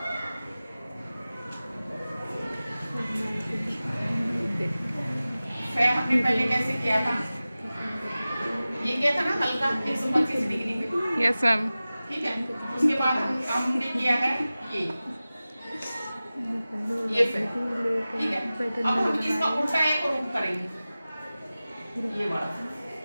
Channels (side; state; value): both; inverted; correlation -0.97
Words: फै हमने पहले कैसे किया था? ये किया था ना हल्का 125 डिग्री पे। Yes ma'am. ठीक है, उसके बाद हमने किया है ये फै। ठीक है, अब हम इसका उल्टा एक रूप करेंगे, ये वाला।